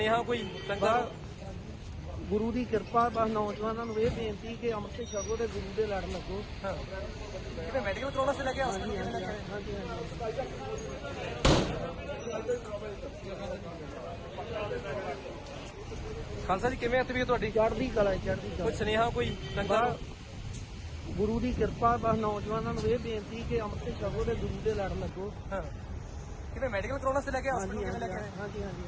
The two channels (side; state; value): both; identical; correlation 1.00